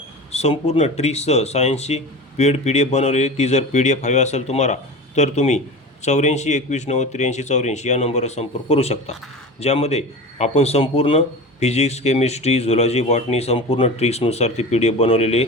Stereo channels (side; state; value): both; normal; correlation 0.31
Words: संपूर्ण ट्रिक्ससह सायन्सची पेड PDF बनवलेली, ती जर PDF हवी असेल तुम्हाला तर तुम्ही 84 21 90 83 84 या नंबरवर संपर्क करू शकता. ज्यामध्ये आपण संपूर्ण फिजिक्स, केमिस्ट्री, झुलॉजी, बॉटनी संपूर्ण ट्रिक्सनुसार ती PDF बनवलेली आहे.